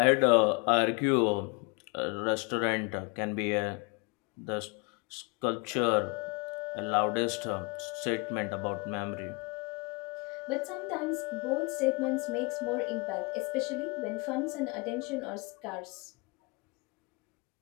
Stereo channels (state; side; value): quieter; right; 29.1 dB